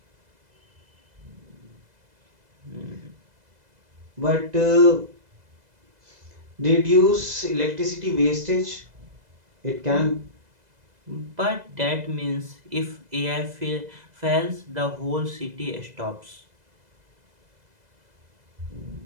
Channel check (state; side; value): late; left; 2.0 ms